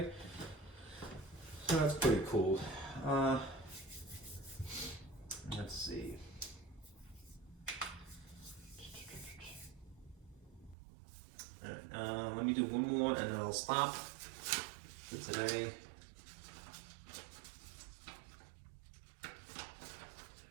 so that's pretty cool. Let's see. All right, let me do one more, and then I'll stop for today.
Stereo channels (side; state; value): left; drops out; at 10.8 s